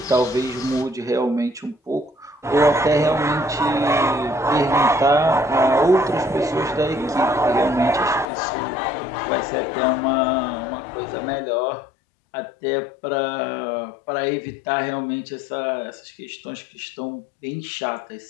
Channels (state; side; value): drops out; right; at 8.2 s